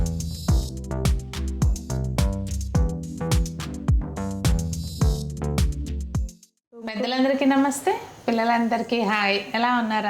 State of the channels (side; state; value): both; identical; correlation 1.00